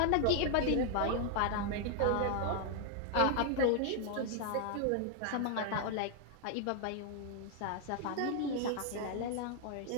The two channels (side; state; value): both; different; correlation 0.00